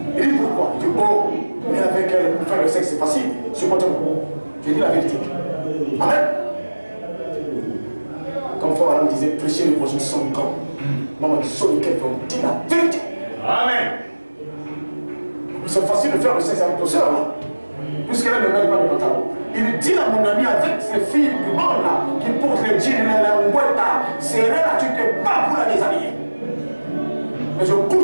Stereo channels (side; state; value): both; inverted; correlation -1.00